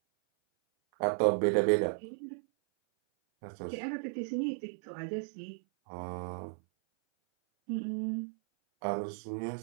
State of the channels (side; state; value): left; silent; 55 dB below the other